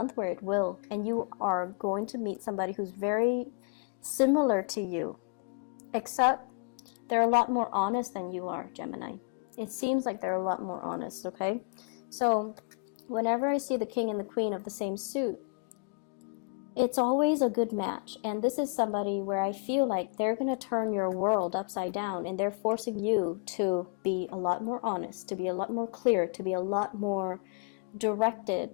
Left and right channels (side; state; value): right; quieter; 36.4 dB